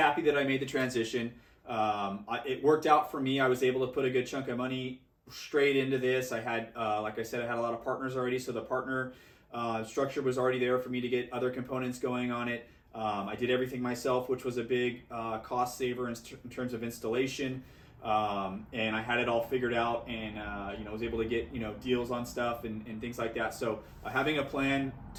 that I made the transition. It worked out for me. I was able to put a good chunk of money straight into this. I had, like I said, I had a lot of partners already, so the partner structure was already there for me to get other components going on it. I did everything myself, which was a big cost saver in terms of installation. And I had it all figured out, and was able to get deals on stuff and things like that. So having a plan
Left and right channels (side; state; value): both; identical; correlation 1.00